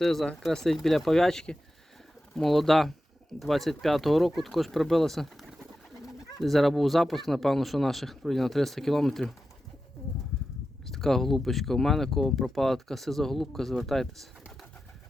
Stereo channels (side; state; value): both; normal; correlation 0.92